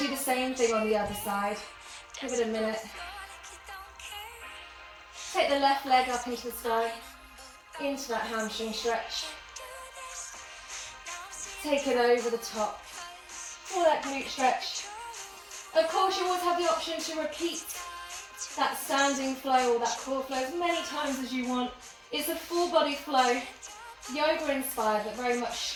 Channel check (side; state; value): both; identical; correlation 1.00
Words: do the same thing on the other side. Give it a minute. Take the left leg up into the sky, into that hamstring stretch. Take it over the top for that glute stretch. Of course, you always have the option to repeat that standing flow or that core flow as many times as you want. It's a full body flow, yoga inspired, but very